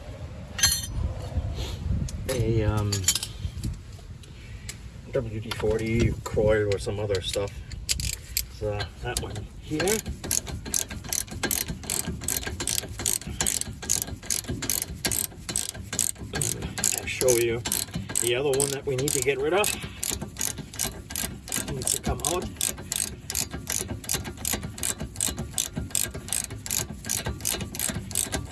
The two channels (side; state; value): both; identical; correlation 1.00